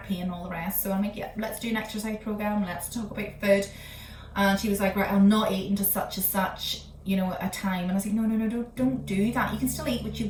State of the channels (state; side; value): identical; both; correlation 1.00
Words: pain and all the rest. So I'm like, yeah, let's do an exercise program, let's talk about food. And she was like, right, I'm not eating to such and such, a time. And I was like, no, don't do that. You can still eat what you